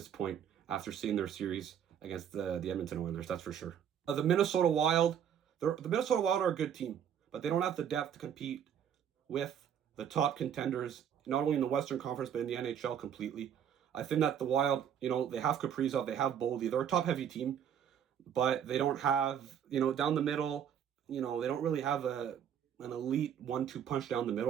point after seeing their series against the Edmonton Oilers, that's for sure. The Minnesota Wild are a good team, but they don't have the depth to compete with the top contenders, not only in the Western Conference, but in the NHL completely. I think that the Wild, they have Kaprizov, they have Boldy. They're a top-heavy team, but they don't have, down the middle, they don't really have an elite 1-2 punch down the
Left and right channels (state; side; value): quieter; left; 8.9 dB